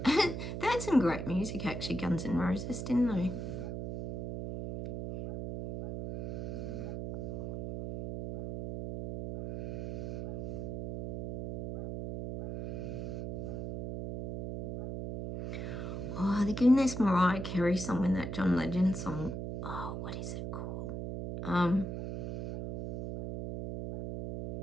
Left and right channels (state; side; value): noise; right; hum, 5 dB below the sound